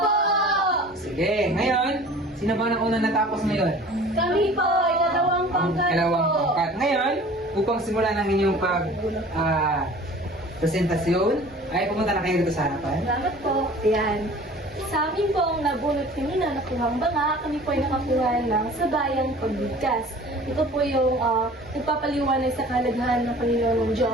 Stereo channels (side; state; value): both; normal; correlation 0.45